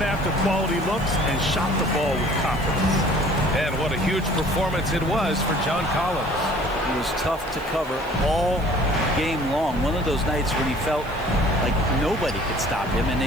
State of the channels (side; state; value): right; noise; hiss, 23 dB below the sound